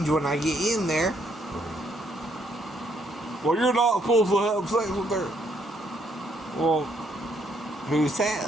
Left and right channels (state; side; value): normal; both; correlation 0.71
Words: when I get in there. Well, you're not supposed to have sex with her. Well, who